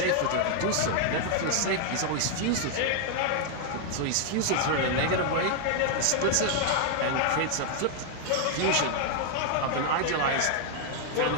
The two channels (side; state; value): both; different; correlation 0.00